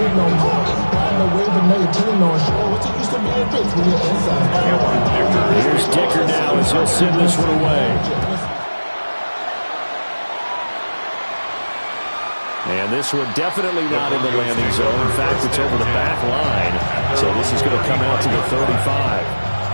Here's Dicker now as he'll send this one away. And this one definitely not in the landing zone. In fact, it's over the back line. So this is going to come out to the 35.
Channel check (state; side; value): inverted; both; correlation -1.00